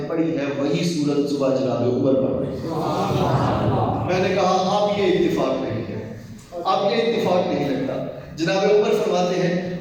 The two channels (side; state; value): both; identical; correlation 1.00